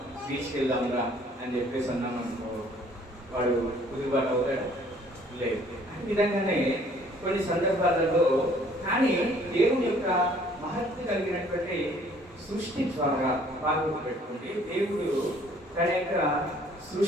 బీచ్కి వెళ్దాంరా అని చెప్పేసి అన్నాం అనుకో, వాడు కుదురుబాటు అవుతాడా? లేదు. ఈ విధంగానే కొన్ని సందర్భాలలో కానీ దేవుని యొక్క మహత్వ కలిగినటువంటి సృష్టి ద్వారా పాల్గొని పెట్టుకుంటే దేవుడు తన యొక్క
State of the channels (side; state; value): both; normal; correlation 0.58